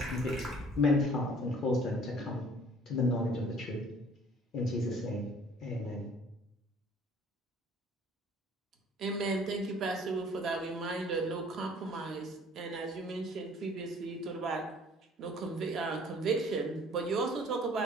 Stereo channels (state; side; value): normal; both; correlation 0.53